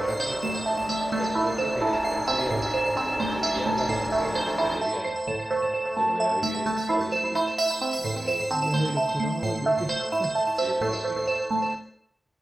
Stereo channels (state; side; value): normal; both; correlation 0.95